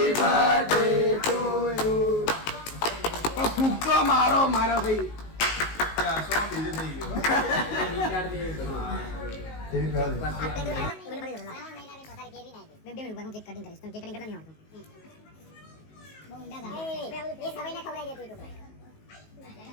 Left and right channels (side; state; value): right; late; 19 ms